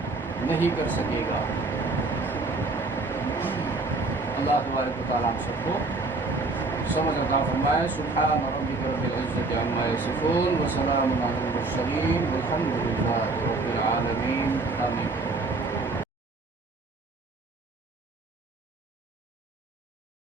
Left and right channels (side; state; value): left; quieter; 3.4 dB